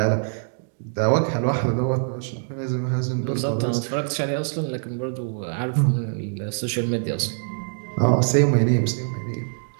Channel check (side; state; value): left; silent; digital silence